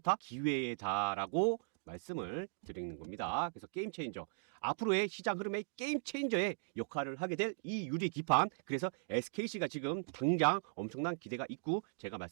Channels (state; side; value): silent; left; digital silence